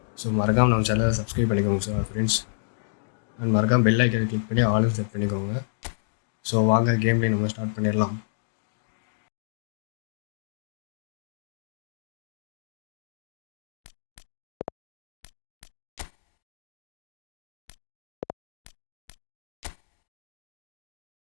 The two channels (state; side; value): silent; right; digital silence